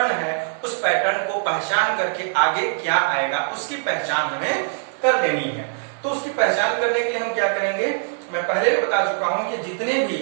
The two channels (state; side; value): silent; left; digital silence